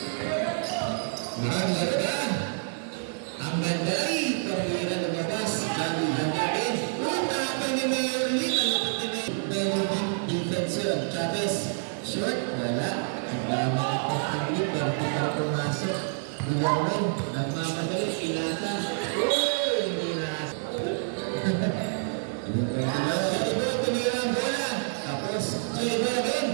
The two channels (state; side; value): silent; left; digital silence